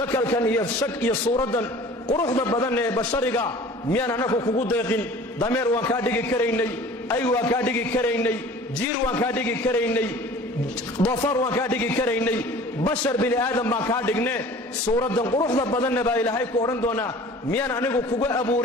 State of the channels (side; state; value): both; normal; correlation 0.45